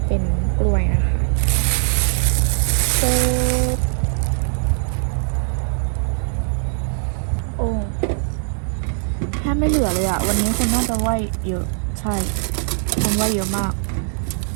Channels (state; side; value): silent; left; 55 dB below the other